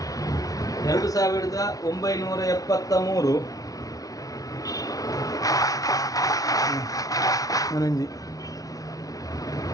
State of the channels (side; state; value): right; late; 0.18 ms